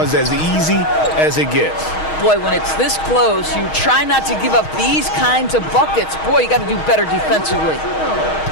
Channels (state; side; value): late; right; 6.4 ms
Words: as easy as it gets. Boy, when it's this close, you try not to give up these kinds of buckets. Boy, you got to do better defensively.